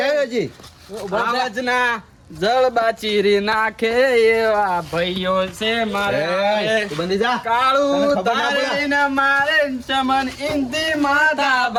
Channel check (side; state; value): both; identical; correlation 1.00